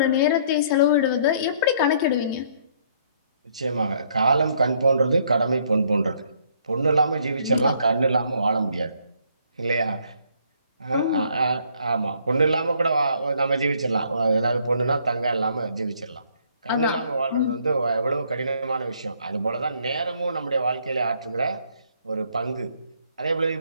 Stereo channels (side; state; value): both; inverted; correlation -0.65